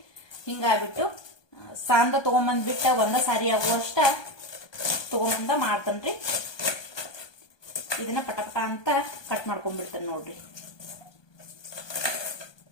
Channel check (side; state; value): right; late; 1.2 ms